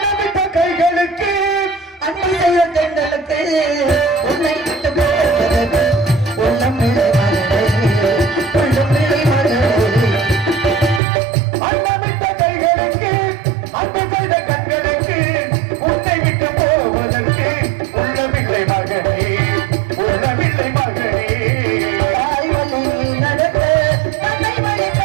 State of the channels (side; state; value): left; drops out; at 11.0 s